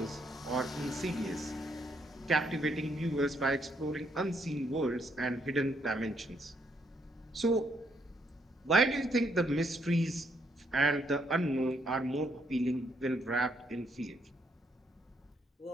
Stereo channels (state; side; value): normal; both; correlation 0.73